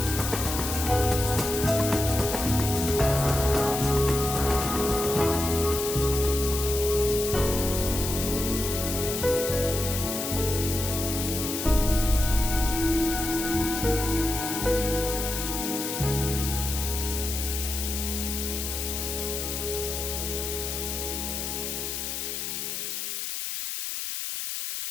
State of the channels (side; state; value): left; noise; hiss, 4 dB below the sound